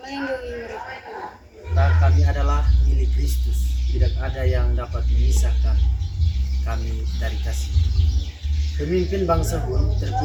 mereka. Kami adalah milik Kristus. Tidak ada yang dapat memisahkan kami dari kasih. Pemimpin bangsa Hun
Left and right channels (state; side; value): identical; both; correlation 1.00